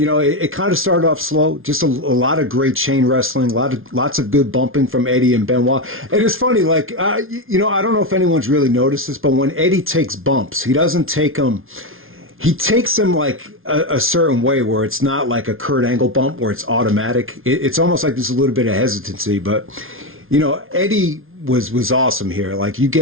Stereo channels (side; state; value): left; late; 0.60 ms